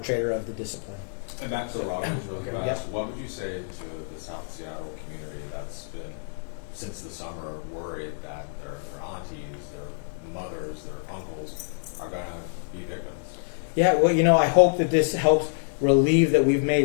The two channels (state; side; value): silent; right; digital silence